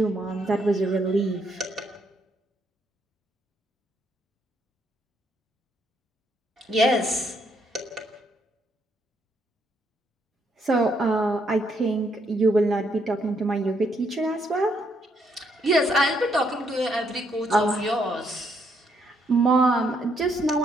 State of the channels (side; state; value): both; normal; correlation 0.73